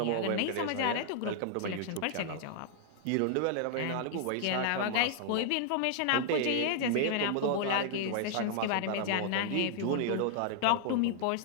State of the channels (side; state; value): both; different; correlation 0.00